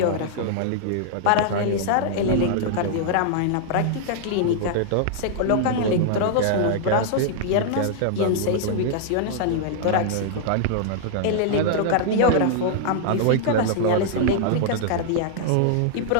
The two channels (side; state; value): both; different; correlation -0.01